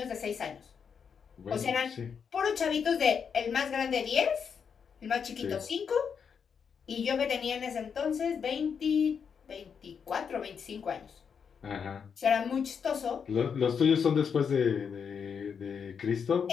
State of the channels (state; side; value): quieter; right; 6.7 dB